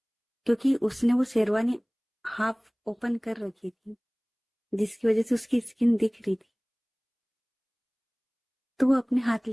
क्योंकि उसने वो शेरवानी हाफ ओपन कर रखी थी, जिसकी वजह से उसकी स्किन दिख रही थी। तो वो अपने हाथ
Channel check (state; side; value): identical; both; correlation 1.00